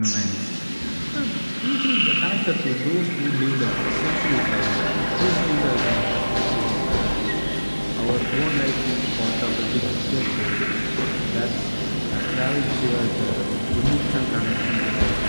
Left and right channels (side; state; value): both; inverted; correlation -1.00